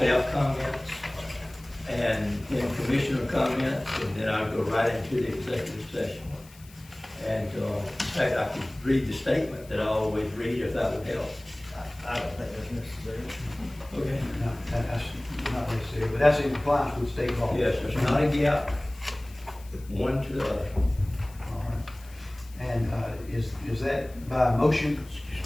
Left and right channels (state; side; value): noise; left; hiss, 23 dB below the sound